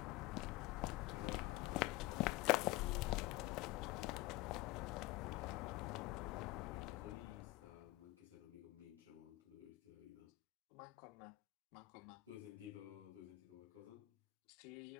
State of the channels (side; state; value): right; quieter; 19.6 dB